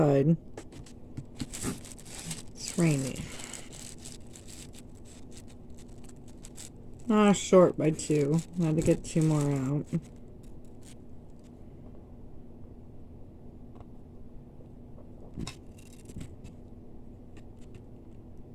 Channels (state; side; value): identical; both; correlation 1.00